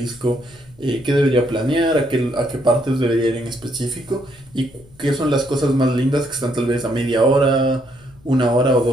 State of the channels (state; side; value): noise; left; rumble, 26 dB below the sound